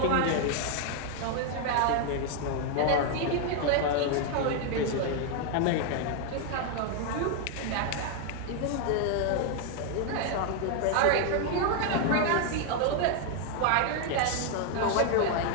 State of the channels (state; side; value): different; both; correlation 0.00